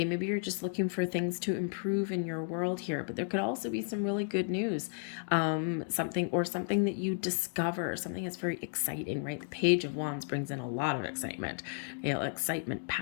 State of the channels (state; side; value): silent; right; 56 dB below the other